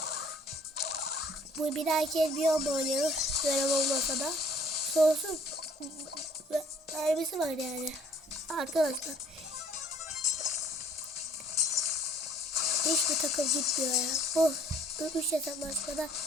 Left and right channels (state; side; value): normal; both; correlation 0.58